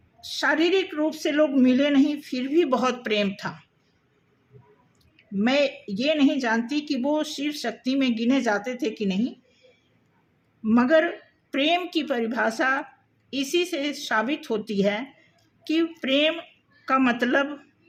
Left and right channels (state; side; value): identical; both; correlation 1.00